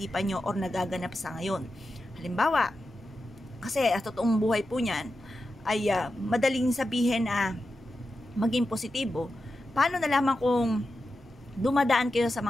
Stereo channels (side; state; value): both; normal; correlation 0.90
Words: nyo or nagaganap sa ngayon. Halimbawa, kasi at totoong buhay po niyan, ay madaling sabihin na maging positibo. Paano nalaman kung dumadaan kayo sa